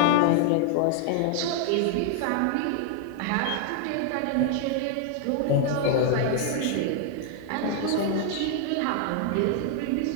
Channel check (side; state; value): both; different; correlation 0.00